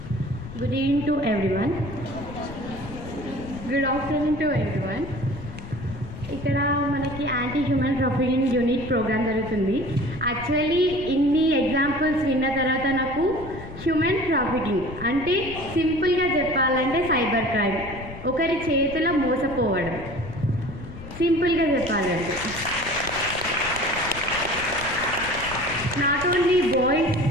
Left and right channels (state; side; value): noise; left; rumble, 13 dB below the sound